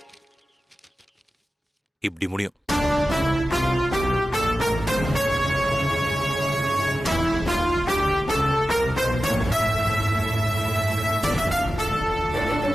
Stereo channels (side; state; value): both; normal; correlation 0.94